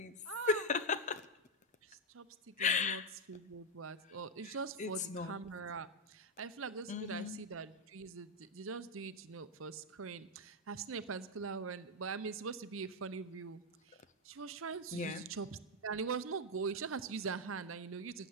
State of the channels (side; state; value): both; normal; correlation 0.02